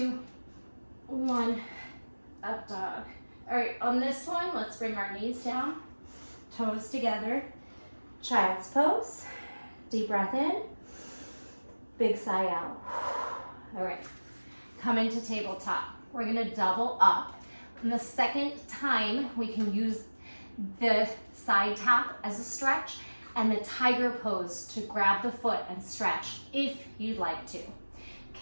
1, up dog. All right, on this one, let's bring our knees down, toes together, child's pose, deep breath in, big sigh out. All right, come into tabletop. We're gonna double up. And the second time, we can use the side tap as a stretch and the tiger pose to grab the foot and stretch if you'd like to.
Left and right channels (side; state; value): both; inverted; correlation -1.00